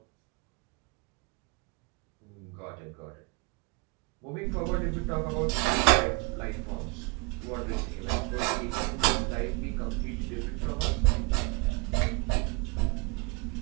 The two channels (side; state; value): left; quieter; 28.0 dB